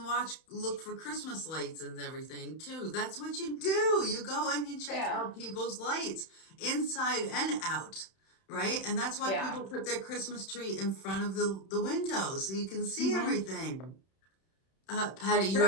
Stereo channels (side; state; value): right; late; 31 ms